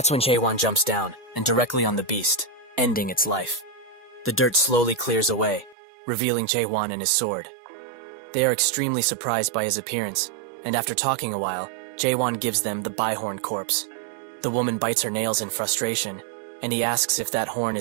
when Jae-won jumps down, and directly on the beast, ending its life. The dirt slowly clears away, revealing Jae-won and his sword. They are extremely surprised by his appearance, and after talking a while, Jae-won gives them the Bihorn corpse. The woman bites her nails in frustration, and he asks if that horn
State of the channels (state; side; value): drops out; left; at 5.8 s